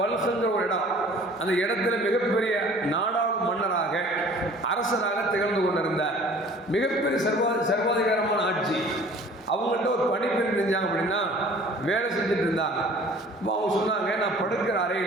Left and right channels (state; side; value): normal; both; correlation 0.49